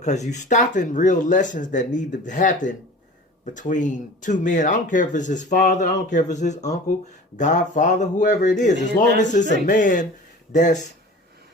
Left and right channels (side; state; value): both; normal; correlation 0.40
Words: you stopping real lessons that need to happen between two men. I don't care if it's his father, I don't care if it's his uncle, godfather, whoever it is, as long as it's a man that's